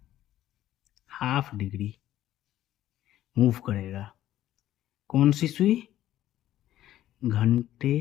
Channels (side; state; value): right; quieter; 13.2 dB